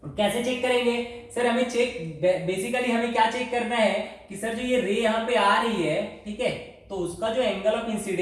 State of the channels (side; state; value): both; identical; correlation 1.00